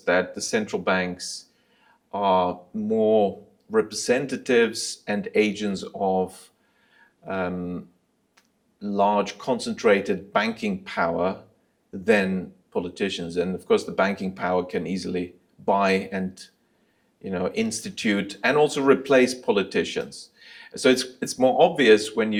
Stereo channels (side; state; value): both; identical; correlation 1.00